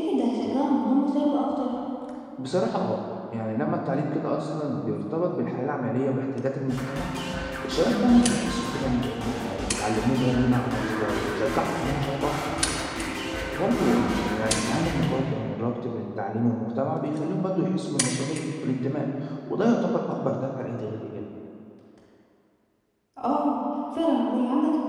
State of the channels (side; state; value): both; identical; correlation 1.00